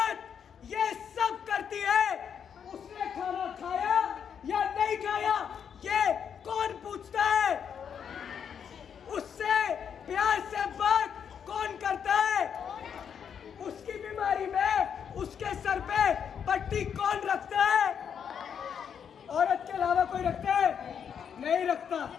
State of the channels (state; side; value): quieter; right; 7.7 dB